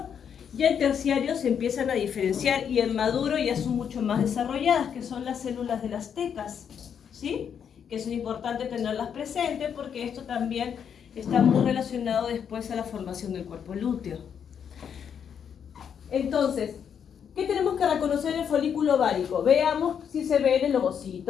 Ya en terciario se empiezan a diferenciar y en maduro ya son mucho más desarrolladas, que son las células de las tecas, ¿sí? Que es importante tenerlas presentes porque esto también está muy relacionado después a la formación del cuerpo lúteo. Entonces, ¿qué tenemos que reconocer en el folículo ovárico? Veamos si se ve en el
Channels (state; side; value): quieter; right; 7.8 dB